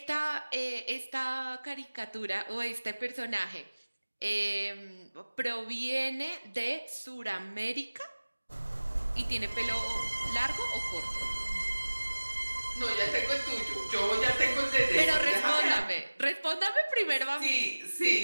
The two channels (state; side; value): inverted; both; correlation -1.00